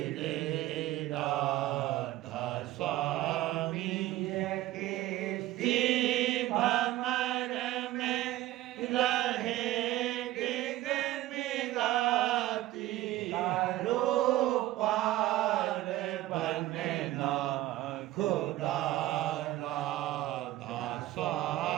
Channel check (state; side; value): quieter; left; 15.6 dB